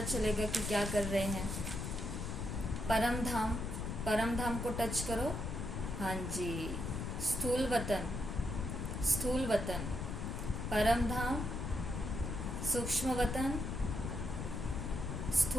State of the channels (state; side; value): noise; left; rumble, 4 dB below the sound